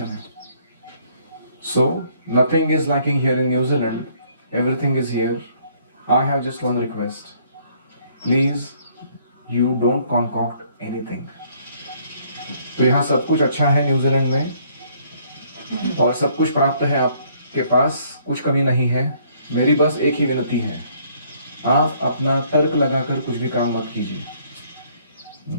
है। So nothing is lacking here in New Zealand, everything is here. I have just one request, please you don't concoct anything. तो यहाँ सब कुछ अच्छा है न्यूजीलैंड में और सब कुछ प्राप्त है आपके पास, कुछ कमी नहीं है। मेरी बस एक ही विनती है, आप अपना तर्क लगाकर कुछ भी काम मत कीजिए।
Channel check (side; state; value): both; inverted; correlation -0.64